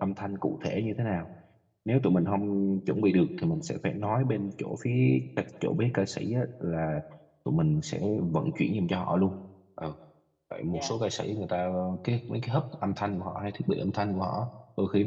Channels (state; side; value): identical; both; correlation 1.00